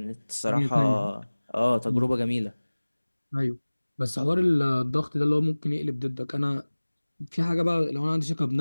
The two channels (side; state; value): both; inverted; correlation -1.00